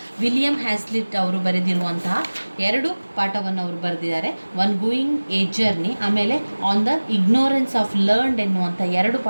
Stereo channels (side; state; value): both; inverted; correlation -1.00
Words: ವಿಲಿಯಂ ಹ್ಯಾಸ್ಲಿಟ್ ಅವರು ಬರೆದಿರುವಂತಹ 2 ಪಾಠವನ್ನು ಅವರು ಬರೆದಿದ್ದಾರೆ. ಒನ್ ಗೋಯಿಂಗ್ ಎ ಜರ್ನಿ, ಆಮೇಲೆ on the ignorance of learned ಎನ್ನುವಂಥ 2